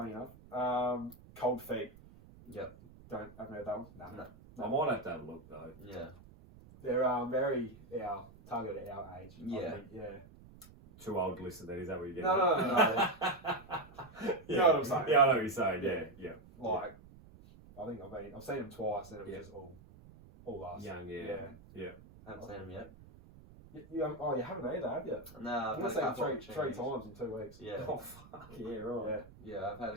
enough. Cold Feet. Yep. Haven't heard that one? No. I might have to have a look though. Yeah. They're very targeted at our age. Yeah. I think, yeah. Too old to listen then, is that what you're getting? No. You know what I'm saying? Yeah, I know what you're saying, yeah. Like, I think I've seen them twice and it was just all us. Young, I haven't seen them yet. You haven't either, have you? No, I've seen them three times in 2 weeks. Yeah. Oh, fuck, yeah, right. Yeah, I've had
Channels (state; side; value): noise; right; rumble, 21 dB below the sound